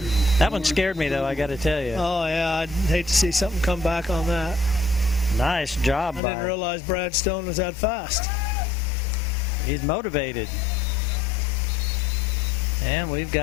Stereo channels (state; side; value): drops out; right; at 6.2 s